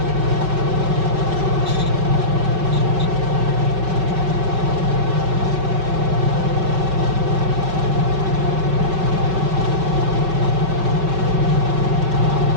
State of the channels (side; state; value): left; late; 5.3 ms